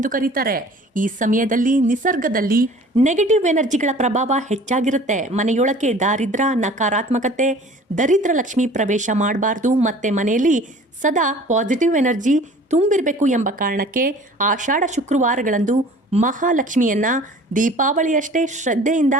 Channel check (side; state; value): both; normal; correlation 0.47